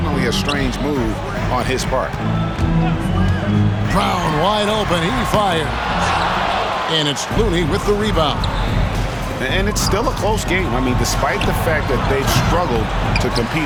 a strange move on his part. Brown wide open. He fires. And it's Looney with the rebound. And it's still a close game. I mean, despite the fact that they've struggled to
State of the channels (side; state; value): both; identical; correlation 1.00